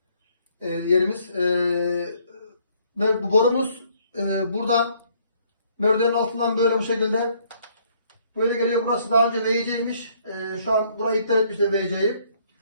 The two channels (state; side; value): inverted; both; correlation -0.65